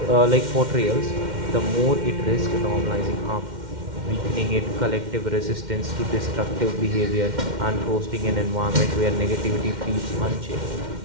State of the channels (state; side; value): late; left; 2.1 ms